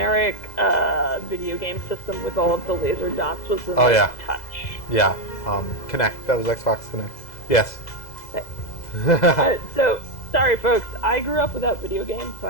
video game system with all of the laser dots was the touch. Connect. That was Xbox Connect. Yes. So sorry folks, I grew up without video games, so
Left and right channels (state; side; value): late; right; 2.0 ms